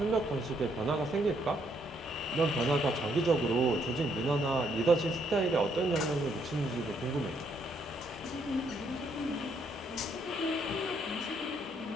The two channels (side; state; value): both; normal; correlation 0.72